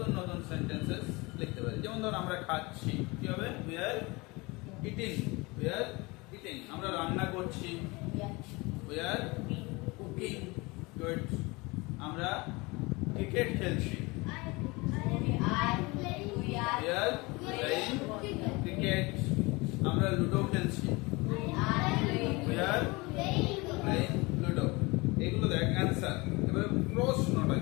নতুন সেন্টেন্সেস লিখতে পারি। যেমন ধর আমরা খাচ্ছি, কি হবে? We are eating, we are eating, আমরা রান্না করছি। We are cooking, good, আমরা ক্রিকেট খেলছি। We are playing cricket, আমরা লুডো খেলছি। We are playing ludo। এগুলো দেখ অ্যানসার। এবারে প্রশ্নটা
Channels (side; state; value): right; quieter; 24.8 dB